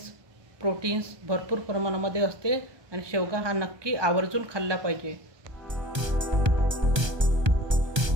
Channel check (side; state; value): left; late; 1.3 ms